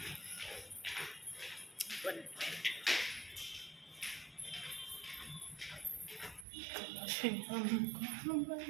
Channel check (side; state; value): left; drops out; at 6.5 s